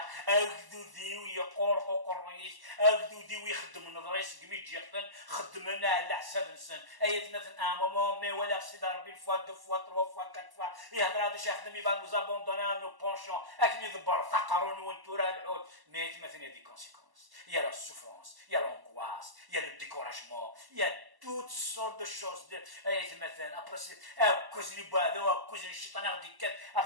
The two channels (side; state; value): left; late; 1.0 ms